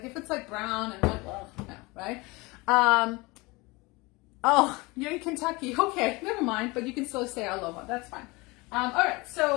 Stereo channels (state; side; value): quieter; right; 24.3 dB